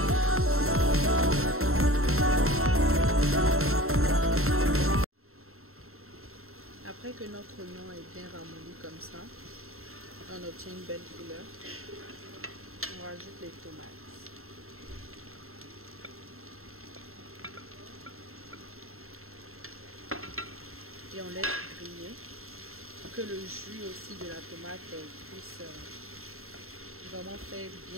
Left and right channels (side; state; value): left; late; 0.62 ms